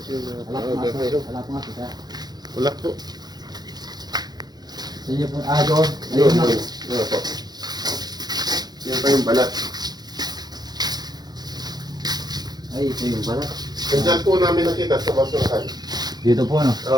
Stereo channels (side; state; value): left; late; 0.19 ms